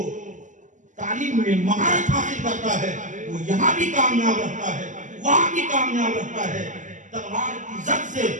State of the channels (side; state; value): left; late; 0.37 ms